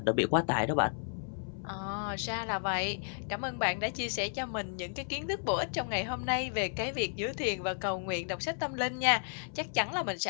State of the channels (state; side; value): silent; right; 56 dB below the other